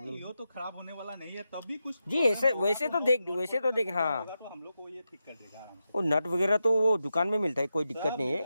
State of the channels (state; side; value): inverted; both; correlation -0.89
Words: ये तो खराब होने वाला नहीं है। तब भी कुछ जी ऐसे वैसे तो देख हाँ। होगा तो हम लोग को ये ठीक कर देगा आराम से। वो नट वगैरह तो वो दुकान में मिलता है, कोई दिक्कत नहीं है।